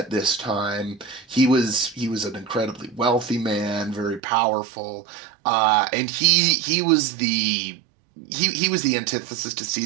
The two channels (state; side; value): drops out; left; at 4.2 s